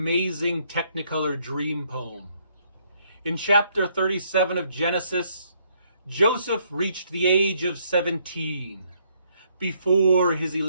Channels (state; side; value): inverted; both; correlation -0.69